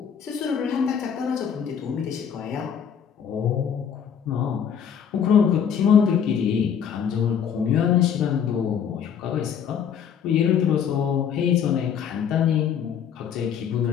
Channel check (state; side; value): quieter; right; 7.9 dB